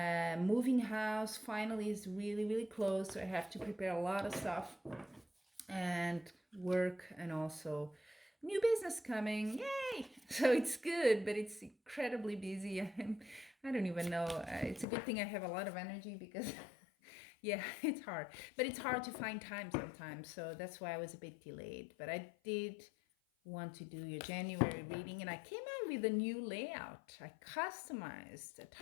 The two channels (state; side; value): drops out; right; at 14.9 s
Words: house finally is really close, so I have to prepare a lot of stuff and work, and also new business coming, yay. So it's good, but it's incredibly busy. I don't even know, it's a good thing I have a lot of energy because yeah, it's hard, but it's hard to find time sometimes, so that's why I was a bit delayed. But I did want to do your January reading, and I came out with a new layout. I customized a